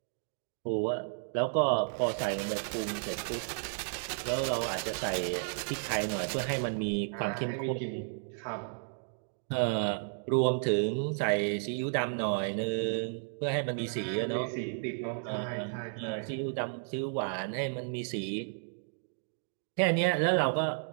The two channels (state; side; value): silent; left; digital silence